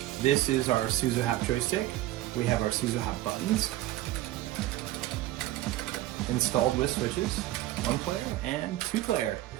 This is our SUZO HAPP joystick. We have our SUZO HAPP buttons installed with switches, 1 player and 2 player.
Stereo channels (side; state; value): left; quieter; 15.5 dB